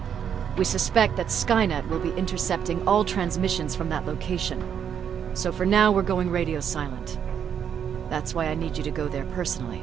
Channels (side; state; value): left; quieter; 8.3 dB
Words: We suspect that Skynet will be intercepting all transmissions from that location. So for now, we're going radio silent. That's why I need you to go there personally.